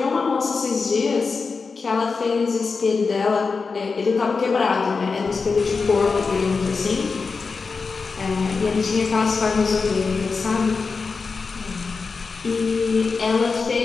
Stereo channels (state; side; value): quieter; right; 4.6 dB